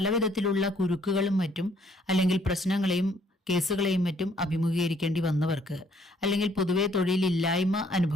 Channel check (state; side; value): normal; both; correlation 0.64